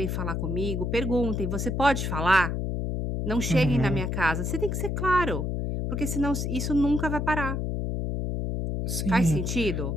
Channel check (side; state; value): left; noise; hum, 1 dB below the sound